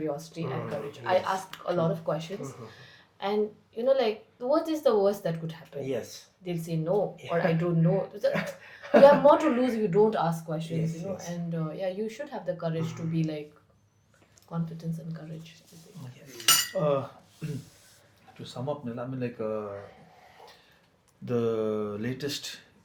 and courage. I ask a lot of questions, and like, what is the worst that could happen? Yes. They'll say no, or I don't know. You have more to lose if you don't ask questions, Yes. and you should have the courage to be like confidence and courage. To sum up, Nila, I mean, like the latest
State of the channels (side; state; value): both; identical; correlation 1.00